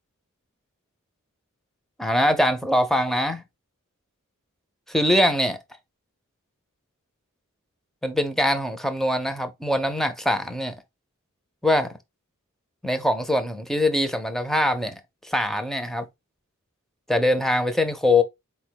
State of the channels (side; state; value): both; normal; correlation 0.79